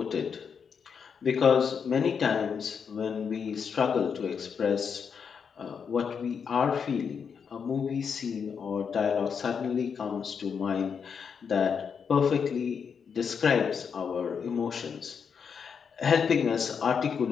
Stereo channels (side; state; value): right; quieter; 6.6 dB